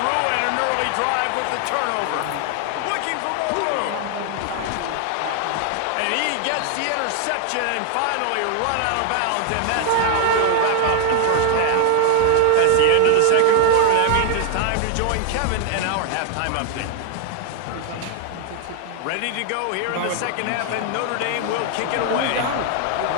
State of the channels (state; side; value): different; both; correlation 0.00